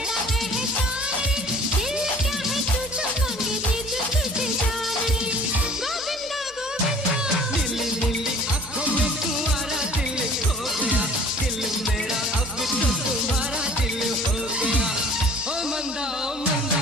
एहसान रे, दिल क्या है तुझे मांगे दे तुझे जान रे, गोविंदा गोविंदा। नीली नीली आंखों में तुम्हारा दिल खो गया, दिल मेरा अब तो तुम्हारा दिल हो गया। ओ मंदा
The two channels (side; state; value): both; normal; correlation 0.49